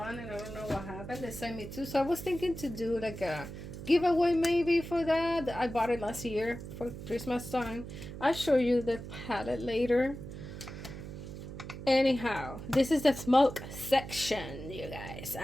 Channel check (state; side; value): noise; right; hum, 10 dB below the sound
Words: and I don't know what happened. They sent me two, so I was thinking to do like a giveaway maybe for that. I bought it last year for Christmas time. I'll show you the palette later. Anyhow, this is the smoke section, you guys.